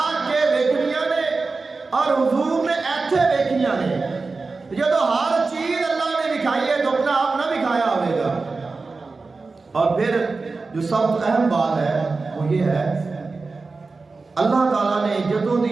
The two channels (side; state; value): left; quieter; 4.0 dB